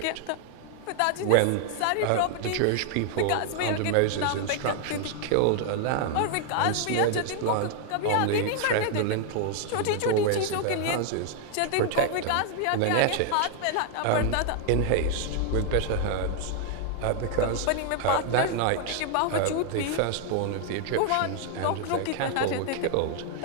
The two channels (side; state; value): both; different; correlation 0.00